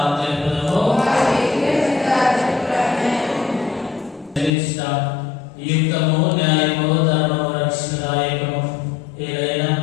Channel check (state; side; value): drops out; right; at 4.5 s